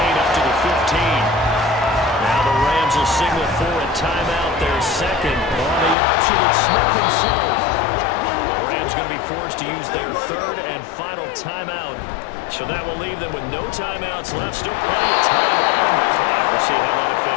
up to the 15. Now the Rams will signal for a timeout. Their second on the option. It's Smith himself. The Rams going to be forced to use their 3rd and final timeout. So that will leave them with no timeouts left. Still plenty of time on the clock. We'll see how that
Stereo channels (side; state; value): right; drops out; at 6.0 s